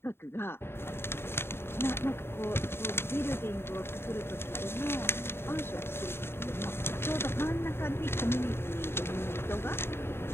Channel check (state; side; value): late; right; 0.11 ms